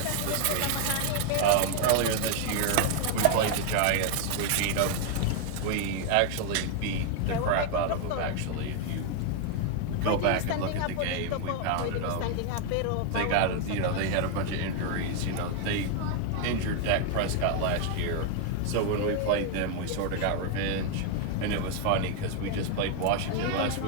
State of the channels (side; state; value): both; different; correlation 0.00